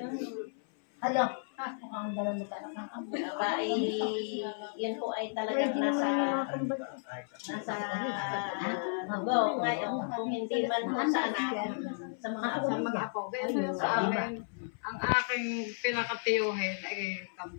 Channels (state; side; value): silent; right; 56 dB below the other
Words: Hello. Aba, yan po ay talagang nasa go. Ngayon, kung hindi man po sa anak, sa mga apo. Ganyan sa akin, ang aking pinakatiyuhin ay